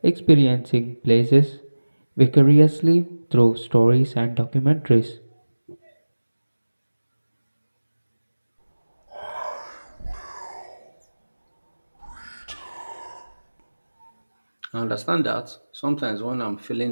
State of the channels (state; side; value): inverted; both; correlation -1.00